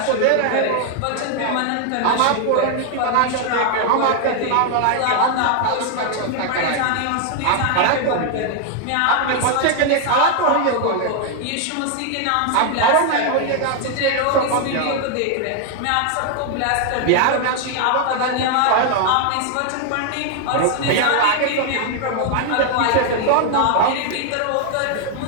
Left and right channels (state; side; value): different; both; correlation 0.00